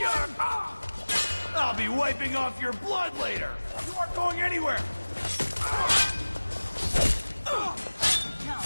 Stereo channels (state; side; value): inverted; both; correlation -1.00